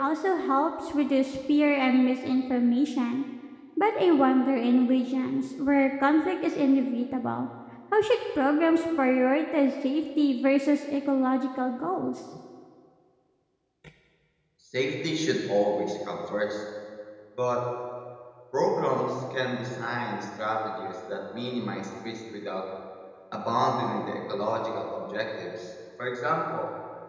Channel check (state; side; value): identical; both; correlation 1.00